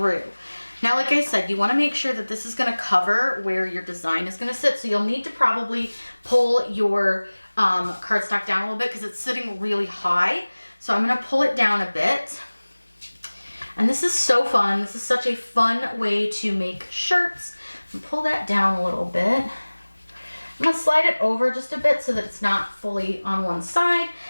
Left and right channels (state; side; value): inverted; both; correlation -1.00